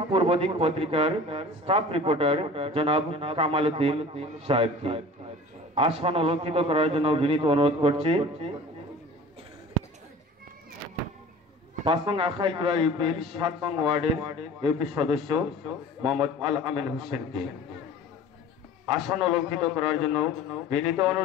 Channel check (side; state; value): both; normal; correlation 0.42